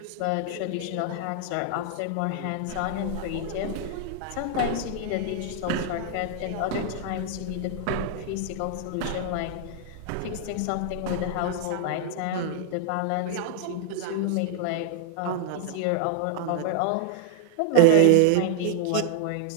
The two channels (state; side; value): different; both; correlation 0.00